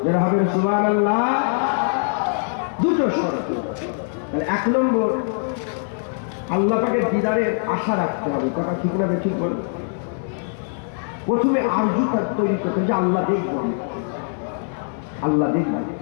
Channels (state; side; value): silent; right; 64 dB below the other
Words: যারা হবে সুবহানাল্লাহ। দুটো শর্ত। এক নম্বর, আল্লাহ পাকের দিদারের আশা রাখতে হবে। কথা ঠিক না ঠিক বল? প্রথমে আরজু তৈরি করতে, যে আল্লাহ দেখবো, আল্লাহ দেখবো।